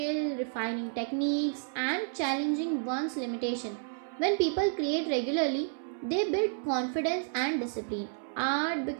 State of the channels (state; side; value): silent; left; 57 dB below the other